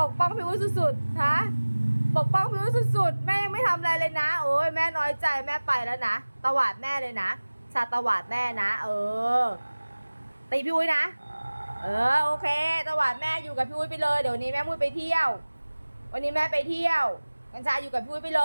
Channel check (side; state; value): both; inverted; correlation -1.00